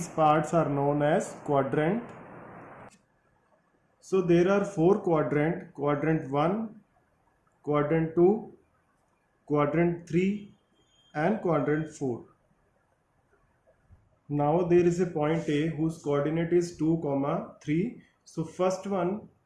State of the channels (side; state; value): both; identical; correlation 1.00